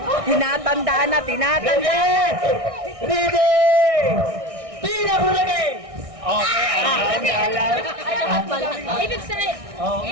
Tinatandaan na, tinatandaan. Ready! Tira ko lagi! Okay, Ibig sabihin,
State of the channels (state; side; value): late; left; 1.6 ms